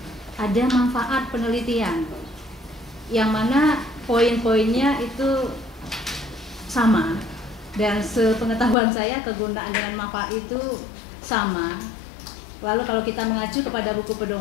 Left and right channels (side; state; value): right; drops out; at 8.8 s